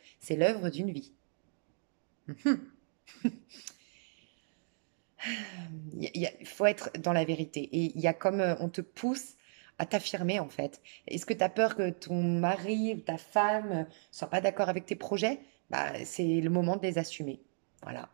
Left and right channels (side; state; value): left; silent; digital silence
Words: c'est l'œuvre d'une vie. Il faut être dans la vérité. Et il y a comme on te pousse à t'affirmer en fait. Est-ce que tu as peur que ton mari ou ta femme soit pas d'accord avec tes projets? Bah, c'est le moment de les assumer. Voilà,